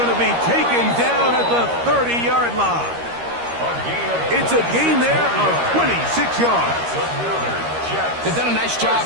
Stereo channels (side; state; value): left; late; 13 ms